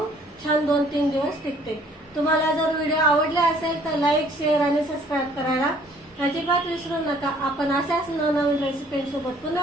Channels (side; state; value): both; normal; correlation 0.58